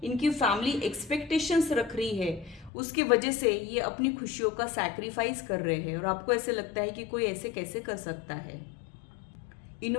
इनकी फैमिली एक्सपेक्टेशंस रख रही है, उसकी वजह से ये अपनी खुशियों का सैक्रिफाइस कर रहे हैं, और आपको ऐसे लगता है कि कोई ऐसे कैसे कर सकता है।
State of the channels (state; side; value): drops out; right; at 2.7 s